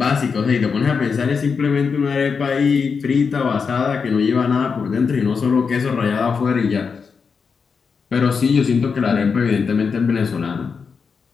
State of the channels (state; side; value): quieter; right; 5.6 dB